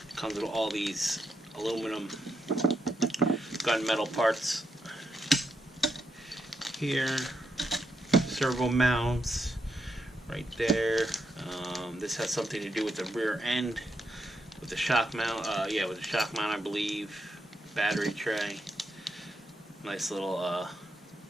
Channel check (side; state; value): both; normal; correlation 0.82